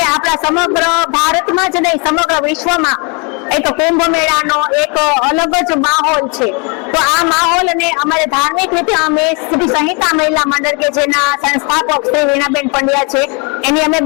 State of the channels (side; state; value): right; quieter; 33.4 dB